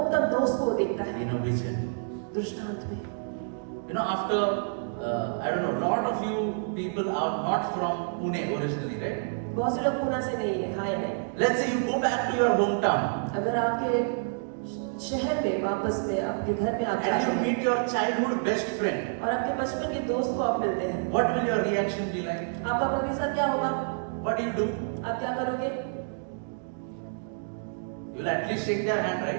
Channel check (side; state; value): left; silent; digital silence